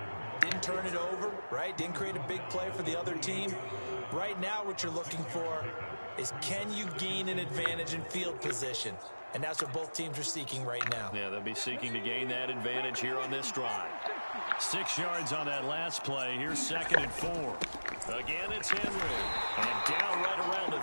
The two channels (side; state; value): both; inverted; correlation -1.00